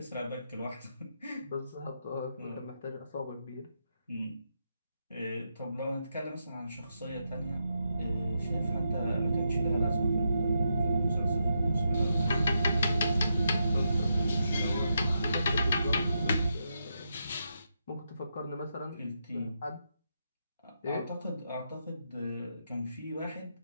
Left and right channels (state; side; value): inverted; both; correlation -0.83